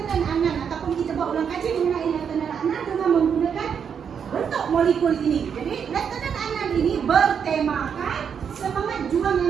Adnan ataupun kita buat ulang kaji mengenai Lieutenant Adnan dengan menggunakan bentuk molekul ini. Jadi Lieutenant Adnan ini bertemakan semangat juang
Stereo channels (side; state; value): left; quieter; 7.3 dB